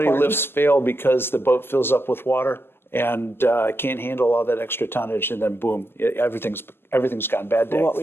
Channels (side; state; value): right; late; 0.11 ms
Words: lifts fail because the boat fills up with water and can't handle all that extra tonnage, and then boom, everything's gone bad day. Well, what